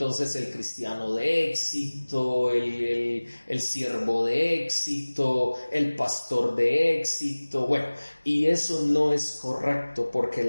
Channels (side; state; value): both; inverted; correlation -1.00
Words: el cristiano de éxito, el siervo de éxito, el pastor de éxito, bueno, y eso no es correcto porque